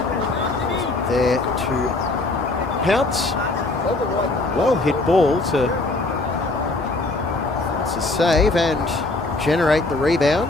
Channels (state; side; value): quieter; right; 3.1 dB